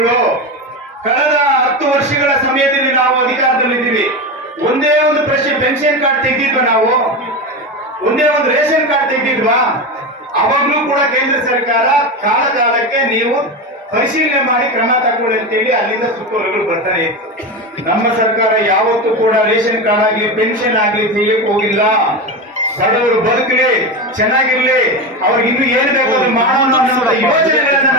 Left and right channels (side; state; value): both; normal; correlation 0.19